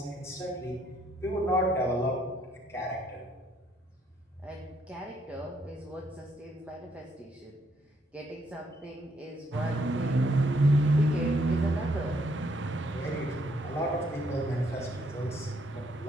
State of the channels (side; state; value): both; normal; correlation 0.71